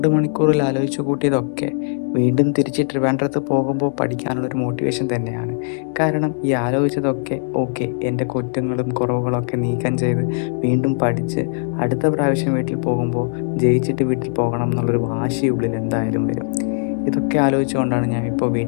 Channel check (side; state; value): right; silent; digital silence